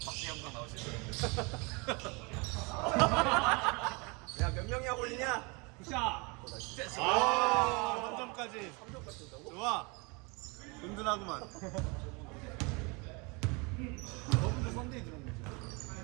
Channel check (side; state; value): left; quieter; 29.4 dB